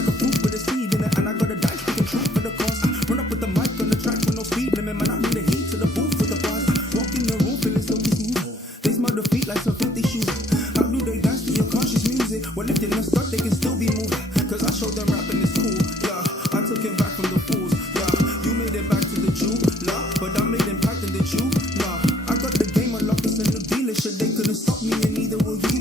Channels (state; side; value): normal; both; correlation 0.63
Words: a fruit with a seed in it, and I got a dice picking truth for the cost. Run up with the mic on the track with no speed limit, man. I bring the heat to the booth for the boss. Walk in the room feeling so smooth. They smell the feet like some filthy shoes. Well, if they're not stuck, they can still be moved. Cause I showed them rapping is cool, yeah. I took it back from the fools, yeah. You made it back to the Jew, nah. But I made impact in the Jew, nah. I got the game unlocked, it's in the dealership. They couldn't stop me and neither will